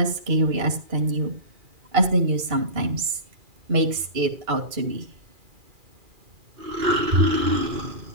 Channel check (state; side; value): late; left; 2.4 ms